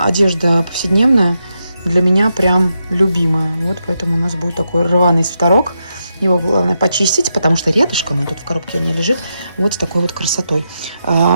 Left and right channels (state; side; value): inverted; both; correlation -0.85